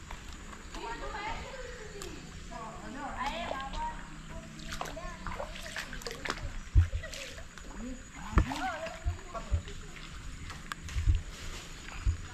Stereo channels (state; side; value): identical; both; correlation 1.00